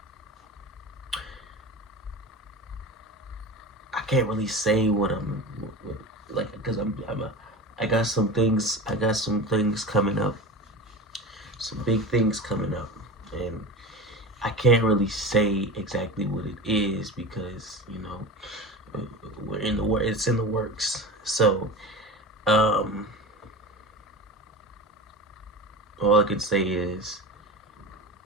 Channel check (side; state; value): both; normal; correlation 0.30